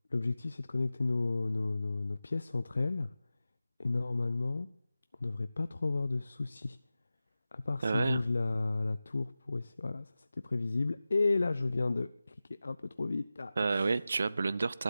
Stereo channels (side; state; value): both; inverted; correlation -0.94